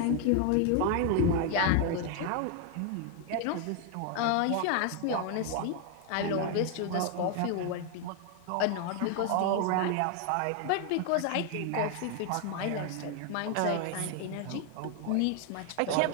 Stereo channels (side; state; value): both; different; correlation 0.01